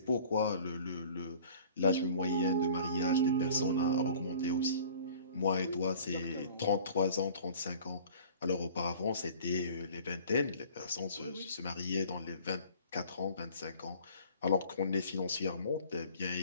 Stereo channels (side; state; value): both; inverted; correlation -0.48